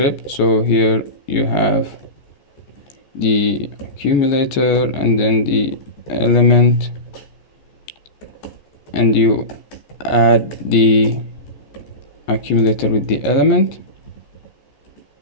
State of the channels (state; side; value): late; right; 14 ms